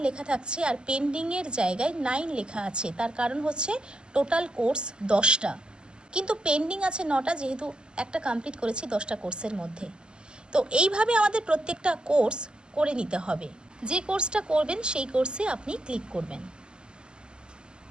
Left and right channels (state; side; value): late; left; 0.048 ms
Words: লেখা থাকছে আর পেন্ডিংয়ের জায়গায় 9 লেখা আছে। তার কারণ হচ্ছে টোটাল কোর্স 10টা, কিন্তু পেন্ডিং আছে 9টা, যেহেতু একটা কমপ্লিট করেছি 10টা কোর্সের মধ্যে। তো এইভাবে আমাদের প্রত্যেকটা কোর্স করে নিতে হবে। যে কোর্সটা করবেন সেই কোর্সে আপনি ক্লিক করবেন।